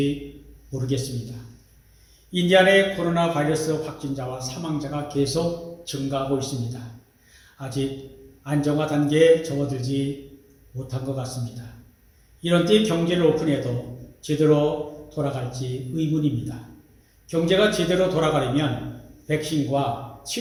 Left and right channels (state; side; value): identical; both; correlation 1.00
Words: 모르겠습니다. 인디아나의 코로나 바이러스 확진자와 사망자가 계속 증가하고 있습니다. 아직 안정화 단계에 접어들지 못한 것 같습니다. 이런 때 경제를 오픈해도 제대로 돌아갈지 의문입니다. 경제가 제대로 돌아가려면 백신과